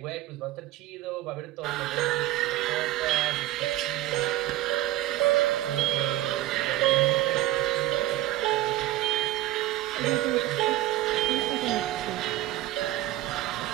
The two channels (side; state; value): left; quieter; 15.0 dB